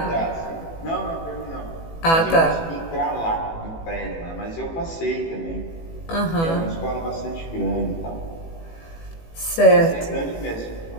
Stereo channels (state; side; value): late; right; 18 ms